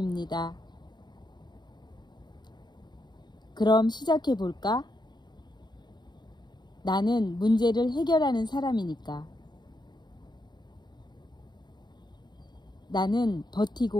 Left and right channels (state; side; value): late; right; 0.21 ms